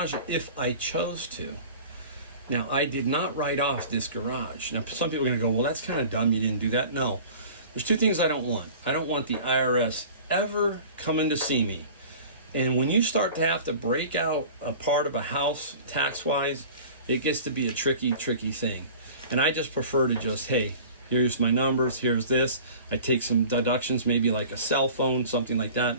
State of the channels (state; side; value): inverted; both; correlation -0.42